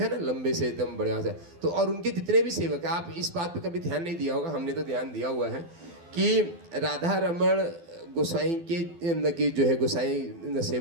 ना, लंबे से एकदम बढ़िया से। तो और उनके जितने भी सेवक हैं, आप इस बात पे कभी ध्यान नहीं दिया होगा, हमने तो ध्यान दिया हुआ है कि राधा रमण गोसाई के जो है गोसाई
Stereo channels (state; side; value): late; left; 12 ms